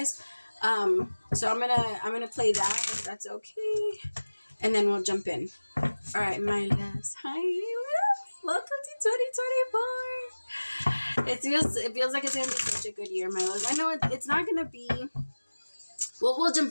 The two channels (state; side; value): inverted; both; correlation -1.00